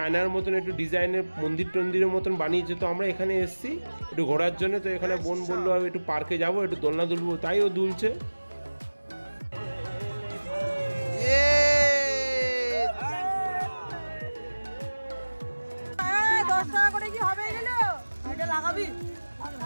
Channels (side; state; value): both; inverted; correlation -1.00